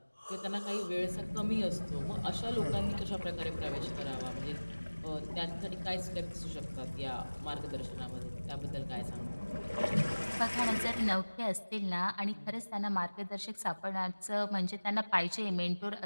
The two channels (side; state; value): both; inverted; correlation -1.00